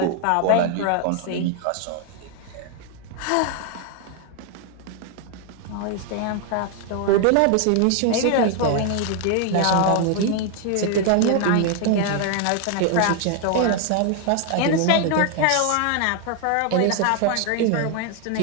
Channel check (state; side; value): different; both; correlation 0.00